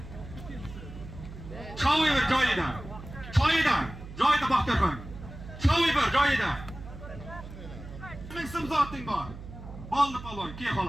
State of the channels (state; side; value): noise; right; hum, 13 dB below the sound